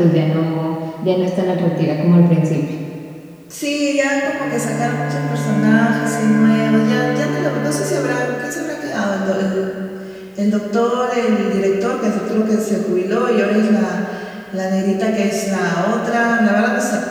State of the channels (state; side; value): identical; both; correlation 1.00